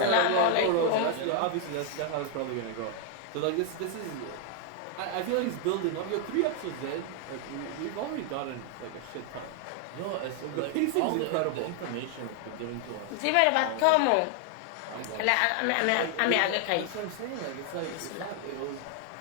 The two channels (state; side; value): different; both; correlation 0.00